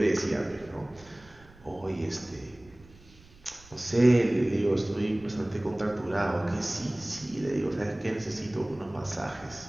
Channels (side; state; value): right; noise; rumble, 24 dB below the sound